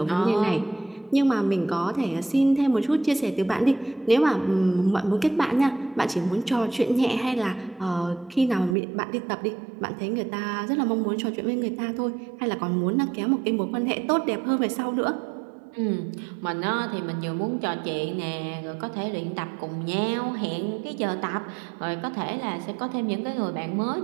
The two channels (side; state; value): left; drops out; at 8.8 s